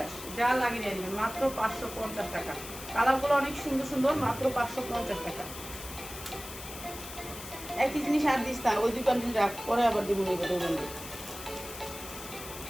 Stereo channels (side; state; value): left; noise; hiss, 12 dB below the sound